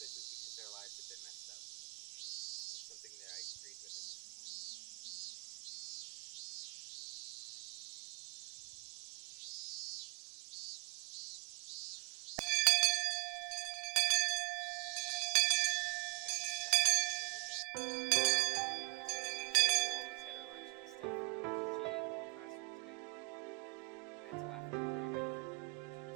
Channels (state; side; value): quieter; left; 31.5 dB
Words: because our lives have been messed up, was something that I agreed with at this point. It got stuck there for a little bit. As for the teacher, who always had her lunch in the staff lounge, she ate in the classroom today. I had to laugh at her curry bento, which